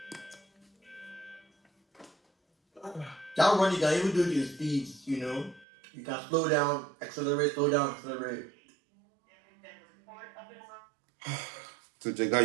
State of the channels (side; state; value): left; drops out; at 5.7 s